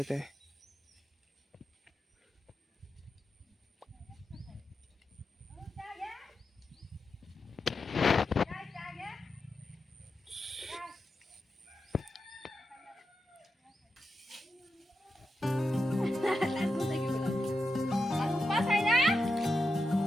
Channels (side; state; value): both; normal; correlation 0.88